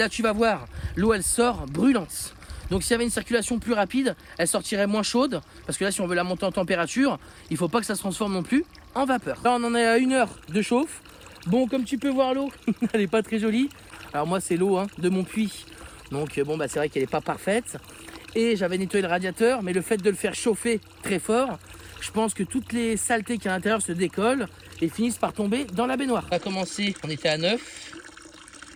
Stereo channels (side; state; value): both; identical; correlation 1.00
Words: tu vas voir, l'eau elle sort brûlante. Donc s'il y avait une circulation plus rapide, elle sortirait moins chaude. Parce que là si on veut la monter en température, il ne faut pas que ça se transforme non plus en vapeur. Là on en est à 1 heure de chauffe. Bon, comme tu peux voir, l'eau, elle n'est pas très jolie. Alors moi c'est l'eau de mon puits. Donc bon, c'est vrai qu'elle n'est pas parfaite. Et j'avais nettoyé le radiateur, mais le fait de le faire chauffer très fort, je pense que toutes les saletés qu'il y a à l'intérieur se décollent et finissent par tomber dans la baignoire. On a commencé, on était à 9.